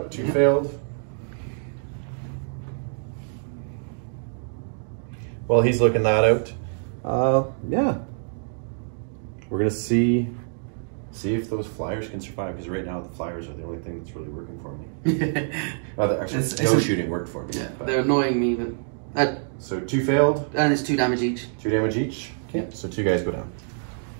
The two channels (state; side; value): silent; left; digital silence